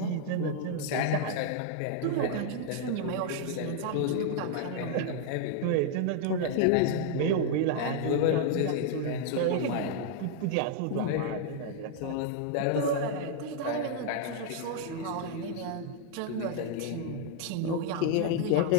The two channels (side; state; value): both; different; correlation -0.01